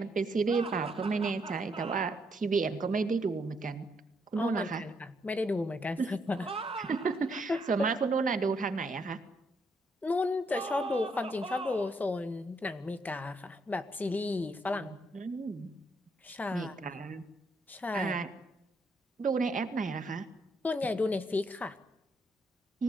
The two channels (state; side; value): normal; both; correlation 0.74